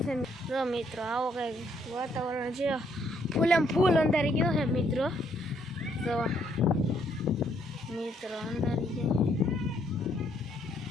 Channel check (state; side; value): normal; both; correlation 0.70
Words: જો મિત્રો આવો કંઈક વાતાવરણ છે ફૂલમ ફૂલ અંધારી ગયો છે મિત્રો તો મિત્રો અંધારી ગયો